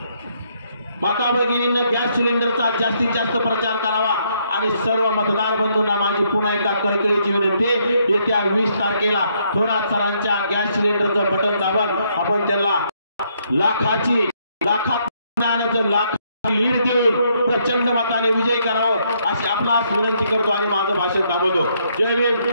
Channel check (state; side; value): inverted; both; correlation -0.72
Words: माता भगिनींना गॅस सिलेंडरचा जास्तीत जास्त प्रचार करावा आणि सर्व मतदार बंधूंना माझी पुन्हा एकदा कळकळीची विनंती, येत्या 20 तारखेला थोरात सरांच्या गॅस सिलेंडरचं बटन दाबून आपण त्यांना लाखात लीड देऊन प्रचंड मताने विजयी करावं अशी आपणास विनंती करतो आणि माझं भाषण थांबवतो. जय भीम,